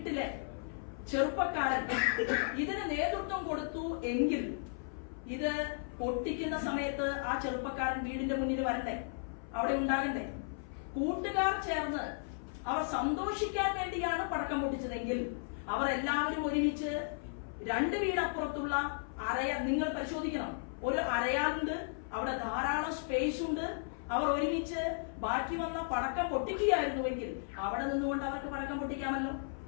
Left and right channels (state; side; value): silent; right; 54 dB below the other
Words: ചെറുപ്പക്കാരൻ ഇതിന് നേതൃത്വം കൊടുത്തു എങ്കിൽ ഇത് പൊട്ടിക്കുന്ന സമയത്ത് ആ ചെറുപ്പക്കാരൻ വീടിന്റെ മുന്നിൽ വരണ്ടേ, അവിടെ ഉണ്ടാകണ്ടേ? കൂട്ടുകാർ ചേർന്ന് അവർ സന്തോഷിക്കാൻ വേണ്ടിയാണ് പടക്കം പൊട്ടിച്ചതെങ്കിൽ അവർ എല്ലാവരും ഒരുമിച്ച് 2 വീടപ്പുറത്തുള്ള നിങ്ങൾ പരിശോധിക്കണം, ഒരു അരയാലുണ്ട്, അവിടെ ധാരാളം സ്പേസ് ഉണ്ട്. അവർ ഒരുമിച്ച് ബാക്കി വന്ന പടക്കം പൊട്ടിക്കുകയായിരുന്നുവെങ്കിൽ അവിടെ നിന്നുകൊണ്ട് അവർക്ക് പടക്കം പൊട്ടിക്കാമല്ലോ.